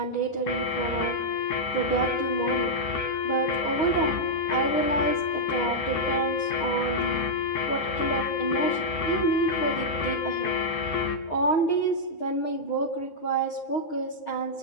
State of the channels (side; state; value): right; late; 9.6 ms